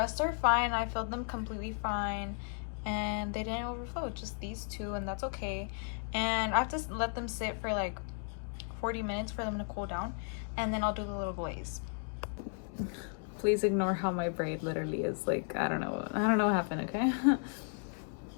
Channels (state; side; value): silent; right; 55 dB below the other